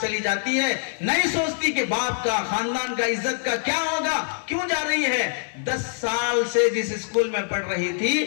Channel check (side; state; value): right; silent; 60 dB below the other